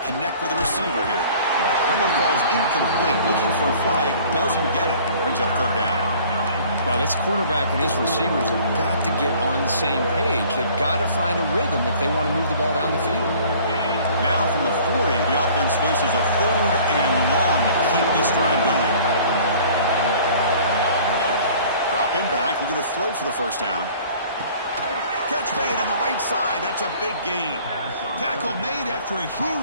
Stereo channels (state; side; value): inverted; both; correlation -0.51